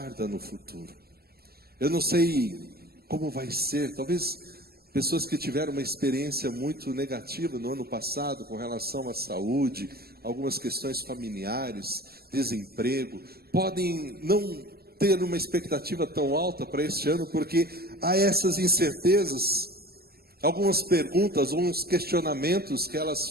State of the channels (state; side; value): late; left; 0.45 ms